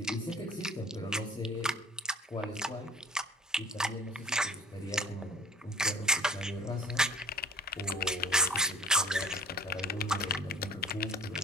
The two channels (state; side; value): normal; both; correlation 0.49